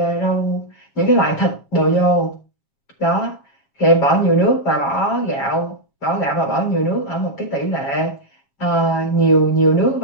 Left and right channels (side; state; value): right; late; 7.3 ms